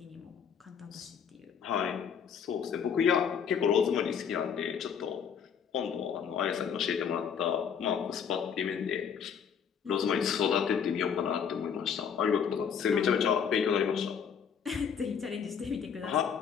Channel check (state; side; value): quieter; right; 7.3 dB